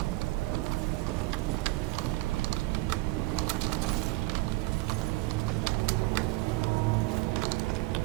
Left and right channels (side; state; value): left; quieter; 21.5 dB